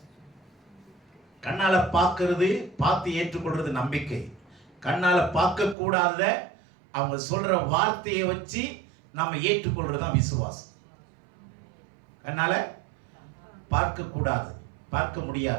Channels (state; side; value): drops out; left; at 5.8 s